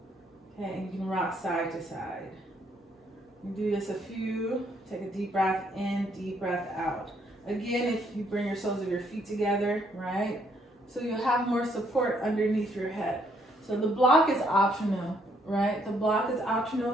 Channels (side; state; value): both; normal; correlation 0.70